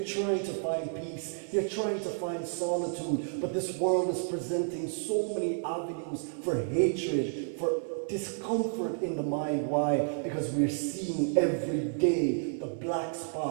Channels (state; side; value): silent; left; digital silence